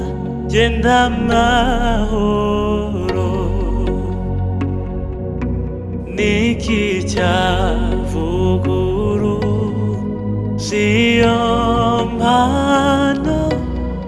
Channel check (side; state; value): both; identical; correlation 1.00